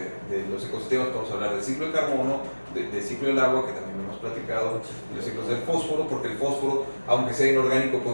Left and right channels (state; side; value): inverted; both; correlation -1.00